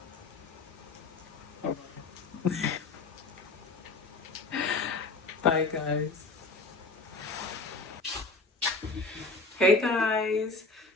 Bye, guys. Hey, guys.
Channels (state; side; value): quieter; right; 3.5 dB